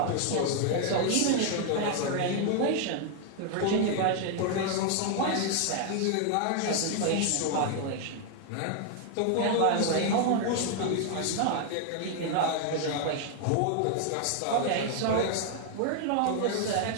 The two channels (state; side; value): different; both; correlation 0.00